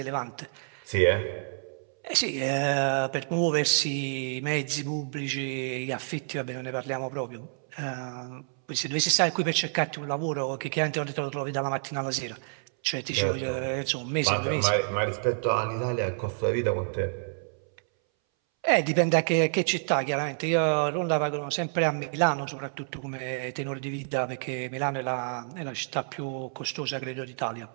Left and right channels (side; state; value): left; silent; 59 dB below the other